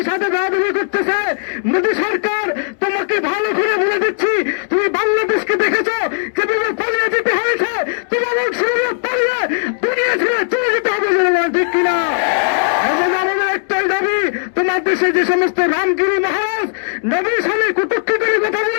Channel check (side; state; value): right; silent; digital silence